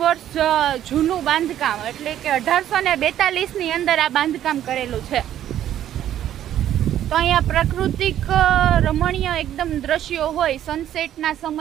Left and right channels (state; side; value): quieter; left; 11.4 dB